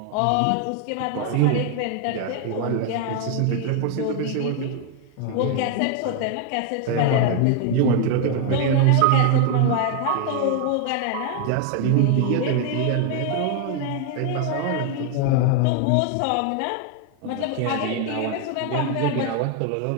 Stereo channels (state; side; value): different; both; correlation 0.01